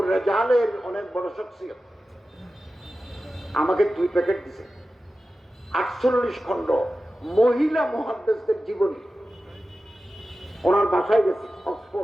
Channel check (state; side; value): normal; both; correlation 0.94